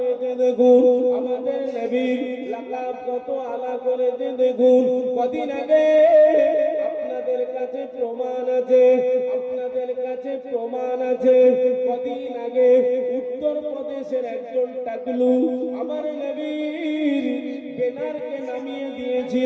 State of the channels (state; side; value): identical; both; correlation 1.00